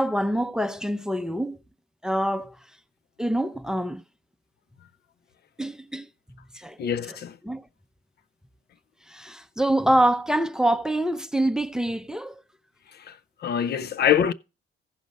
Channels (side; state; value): both; normal; correlation 0.78